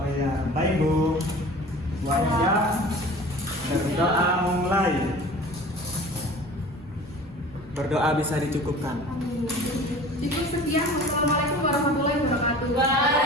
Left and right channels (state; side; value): normal; both; correlation 0.41